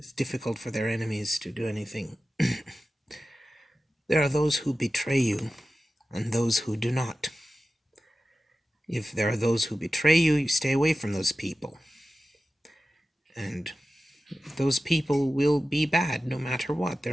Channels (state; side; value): normal; both; correlation 0.94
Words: difficult for their enemies to do anything. There are those who betray you, and those who do not. If there are those who betray you, you stay away from those people. And those people will be bad no matter what.